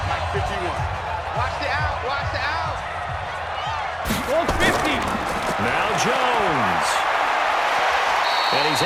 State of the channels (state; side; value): identical; both; correlation 1.00